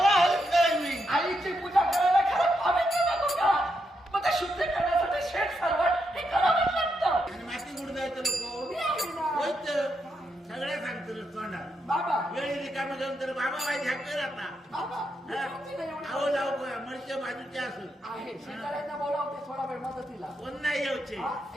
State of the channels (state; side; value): normal; both; correlation 0.82